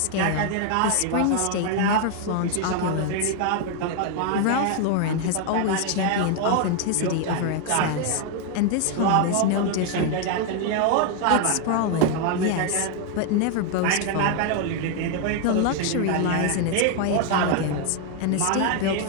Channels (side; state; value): both; different; correlation 0.00